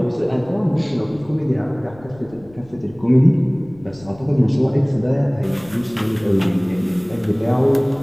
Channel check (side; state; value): left; noise; rumble, 24 dB below the sound